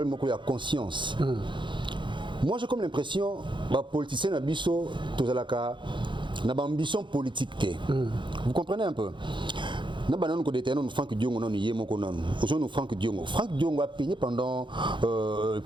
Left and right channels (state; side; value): late; left; 0.23 ms